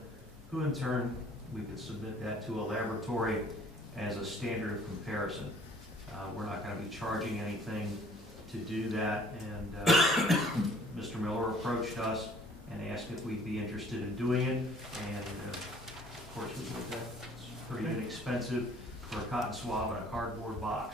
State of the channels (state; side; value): normal; both; correlation 0.56